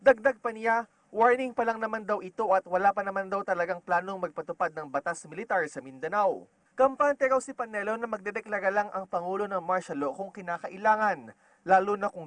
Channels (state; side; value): identical; both; correlation 1.00